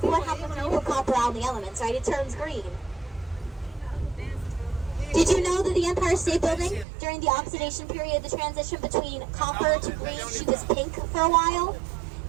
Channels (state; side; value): drops out; left; at 6.9 s